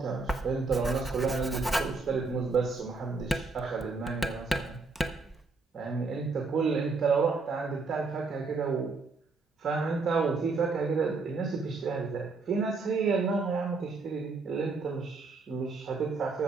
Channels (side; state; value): left; quieter; 4.0 dB